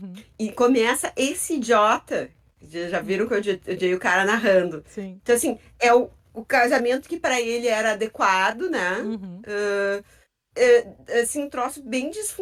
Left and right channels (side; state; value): both; identical; correlation 1.00